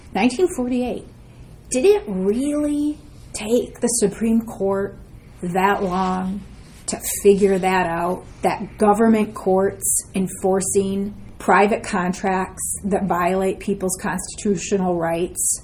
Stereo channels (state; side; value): identical; both; correlation 1.00